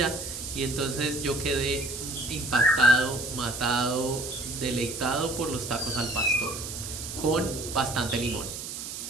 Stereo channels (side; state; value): right; noise; hiss, 8 dB below the sound